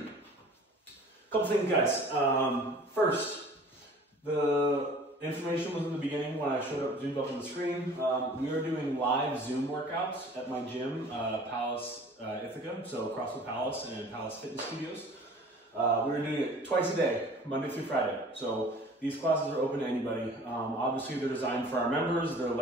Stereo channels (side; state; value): both; normal; correlation 0.46